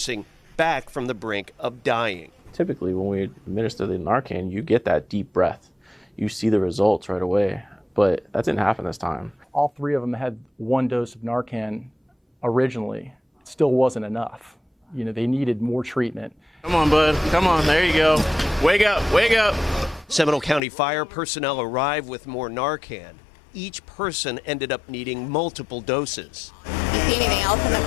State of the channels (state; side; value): drops out; right; at 20.6 s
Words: back from the brink of dying. Typically, when we administer the Narcan, you get that deep breath. You see the results right away, but that didn't happen this time. All 3 of them had 1 dose of Narcan originally. It still wasn't enough. You know, they needed more treatment. Come on, bud. Come on. There you go. Wake up. Wake up. Seminole County fire personnel arrived with more Narcan. Each person ended up needing multiple doses. You see anything else in the